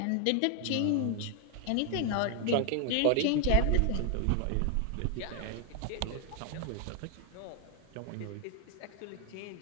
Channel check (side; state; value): both; different; correlation 0.00